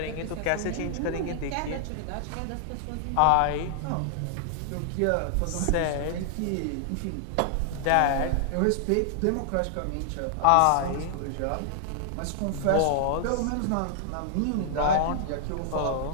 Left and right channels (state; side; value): different; both; correlation -0.01